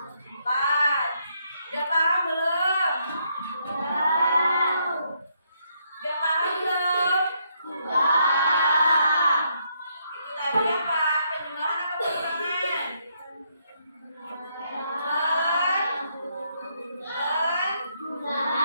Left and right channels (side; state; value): both; inverted; correlation -0.75